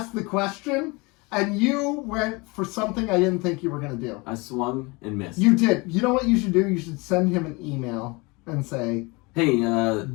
the question?" And you went for something I didn't think you were going to do. I swung and missed. You did. You know what you should do? You should send him an email and say, "Hey,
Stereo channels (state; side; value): quieter; right; 26.4 dB